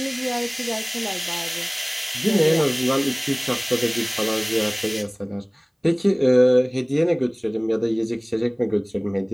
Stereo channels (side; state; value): both; identical; correlation 1.00